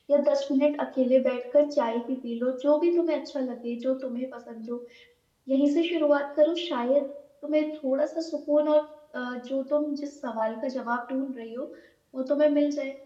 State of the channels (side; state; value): both; identical; correlation 1.00